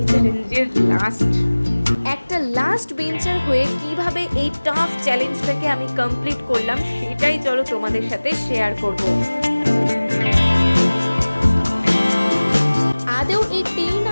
চ্যালেঞ্জের একটা লাস্ট বেঞ্চার হয়ে কিভাবে এই টাফ চ্যালেঞ্জটাকে আমি কমপ্লিট করলাম সেটাই চলো তোমাদের সাথে শেয়ার করব। আদৌ এই 10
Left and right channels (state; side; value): inverted; both; correlation -1.00